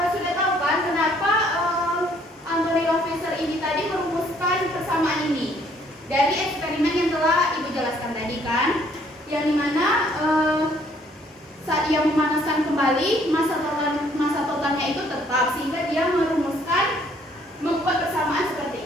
sudah tahu kan kenapa Anthony Lavoisier ini tadi merumuskan persamaan ini dari eksperimen yang telah Ibu jelaskan tadi kan, yang dimana saat dia memanaskan kembali massa totalnya itu tetap, sehingga dia membuat persamaan seperti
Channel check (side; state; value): both; normal; correlation 0.63